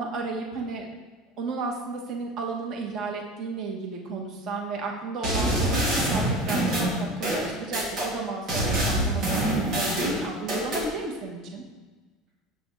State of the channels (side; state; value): both; normal; correlation 0.32